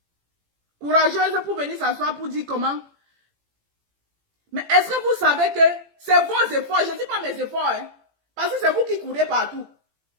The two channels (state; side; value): late; left; 18 ms